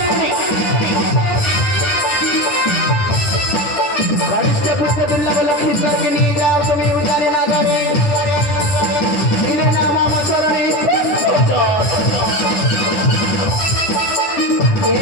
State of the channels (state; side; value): late; right; 9.5 ms